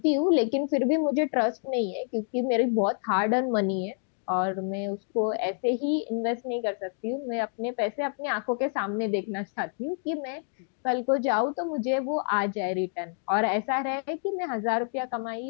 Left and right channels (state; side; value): silent; right; 59 dB below the other